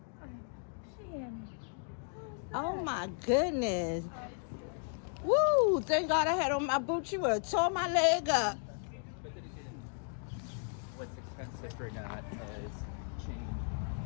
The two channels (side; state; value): right; silent; 54 dB below the other